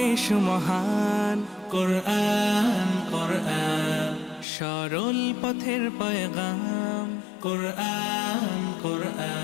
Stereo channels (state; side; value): drops out; right; at 4.5 s